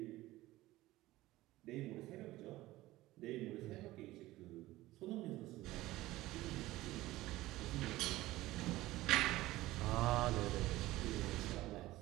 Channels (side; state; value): left; quieter; 17.4 dB